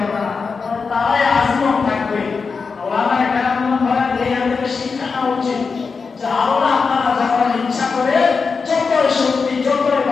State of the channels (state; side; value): quieter; right; 5.0 dB